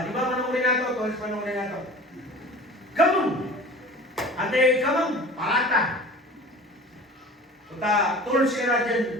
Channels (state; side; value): normal; both; correlation 0.40